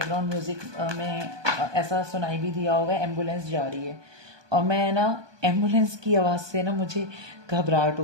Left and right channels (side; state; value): left; late; 1.2 ms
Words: म्यूजिक में ऐसा सुनाई भी दिया होगा, एम्बुलेंस जा रही है। और मैं ना एम्बुलेंस की आवाज़ से ना मुझे घबराहट